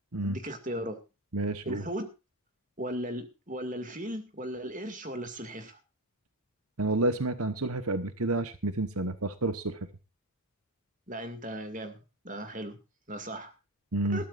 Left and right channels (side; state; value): both; normal; correlation 0.16